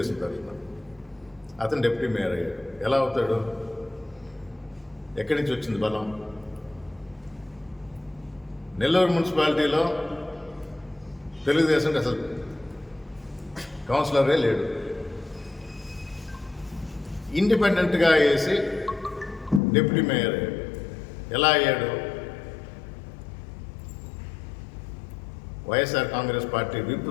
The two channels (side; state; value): right; drops out; at 19.6 s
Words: తరఫున, అతను డిప్యూటీ మేయర్ అయ్యాడు. ఎలా అవుతాడు? ఎక్కడి నుంచి వచ్చింది బలం? నెల్లూరు మున్సిపాలిటీలో తెలుగుదేశంకి అసలు కౌన్సిలరే లేడు. ఇండిపెండెంట్గా వేసి డిప్యూటీ మేయర్ అయ్యాడు. ఎలా అయ్యాడు? వైఎస్ఆర్ కాంగ్రెస్ పార్టీ విప్